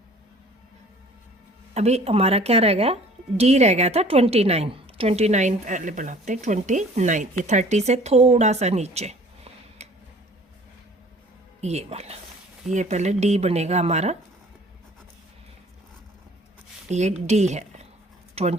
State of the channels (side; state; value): both; normal; correlation 0.50